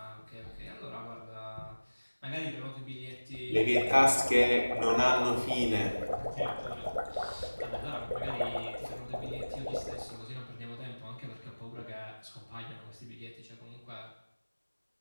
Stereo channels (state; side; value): inverted; both; correlation -1.00